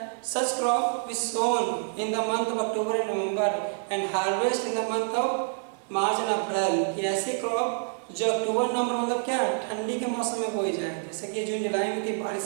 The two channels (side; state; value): left; silent; 60 dB below the other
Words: such crop which sown in the month of October and November and harvest in the month of March and April. कि ऐसी crop जो अक्टूबर नवंबर मतलब क्या ठंडी के मौसम में बोई जाए, जैसे कि जून जुलाई में थी बारिश